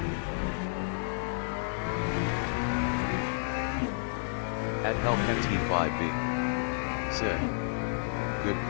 At Hellcat T5B. Said. Good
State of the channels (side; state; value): right; silent; 57 dB below the other